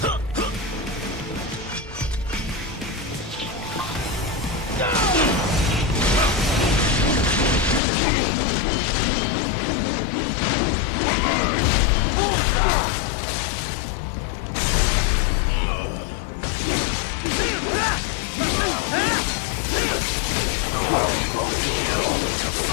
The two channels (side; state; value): right; drops out; at 7.8 s